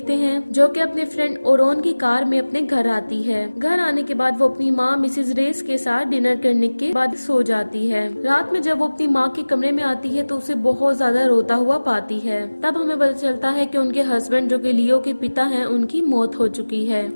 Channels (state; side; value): inverted; both; correlation -1.00